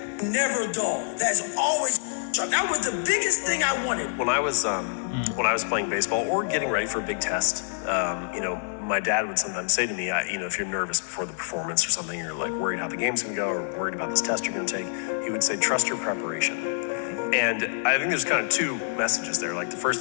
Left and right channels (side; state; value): right; silent; 58 dB below the other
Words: never dull. That is always sharp. That was the biggest thing I wanted. When I was playing baseball or getting ready for a big test, my dad would sometimes say to me, if you're nervous before the performance or something, you're like worried how the game's gonna go or worried about this test you're gonna take, he would say, trust your preparation. And I think there's kind of two messages there. Like the